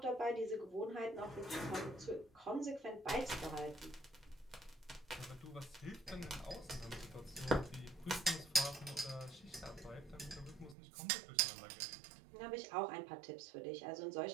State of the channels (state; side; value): drops out; left; at 10.8 s